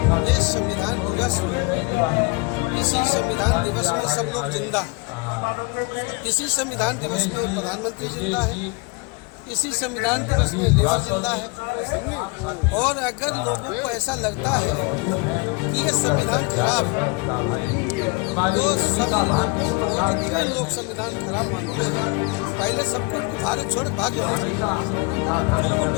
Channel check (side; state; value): right; quieter; 28.9 dB